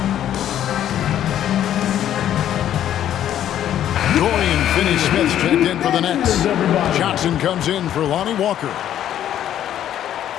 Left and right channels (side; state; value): right; quieter; 11.0 dB